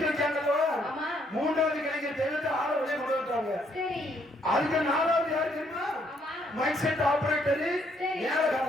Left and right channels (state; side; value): normal; both; correlation 0.70